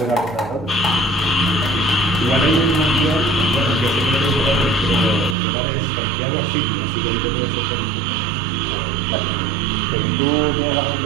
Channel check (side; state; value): left; drops out; at 5.4 s